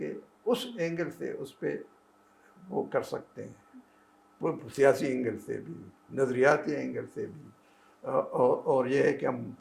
اس اینگل سے اس پہ وہ کر سکتے ہیں، وہ سیاسی اینگل سے بھی، نظریاتی اینگل سے بھی. اور یہ ہے کہ ہم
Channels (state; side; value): identical; both; correlation 1.00